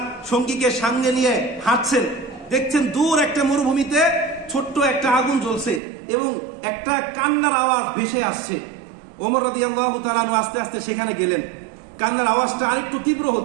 সঙ্গীকে সঙ্গে নিয়ে হাঁটছেন, দেখছেন দূর একটা মরুভূমিতে ছোট্ট একটা আগুন জ্বলছে এবং একটা কান্নার আওয়াজ ভেসে আসছে। ওমর রাদিয়াল্লাহু তাআলা আনহু আস্তে আস্তে সেখানে গেলেন। কান্নার আওয়াজটা আরেকটু তীব্র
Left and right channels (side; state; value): left; drops out; at 5.8 s